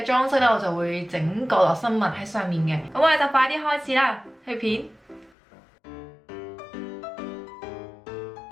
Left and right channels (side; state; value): right; drops out; at 5.3 s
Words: 裝飾咧我就會整角落生物喺上面嘅。咁我哋就快啲開始啦，去片。